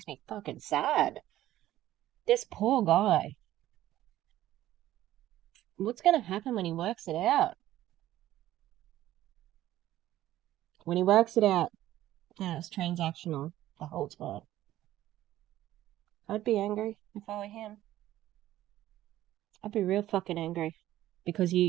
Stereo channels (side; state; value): left; quieter; 14.0 dB